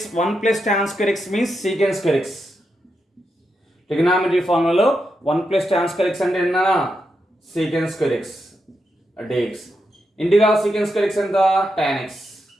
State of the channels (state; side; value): normal; both; correlation 0.85